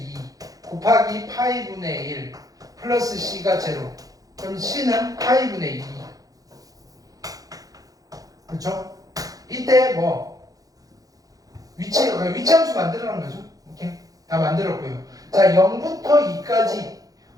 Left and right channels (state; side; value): late; left; 0.17 ms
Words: 곱하기 파이 분의 1 플러스 c가 제로. 그럼 c는 파이 분의 2. 그렇죠? 이때 뭐 위치 함수 만들어놓은 거죠. 오케이? 다 만들었고요. 자, 0부터 2까지